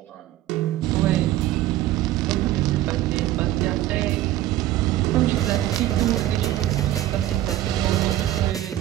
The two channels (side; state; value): left; quieter; 14.2 dB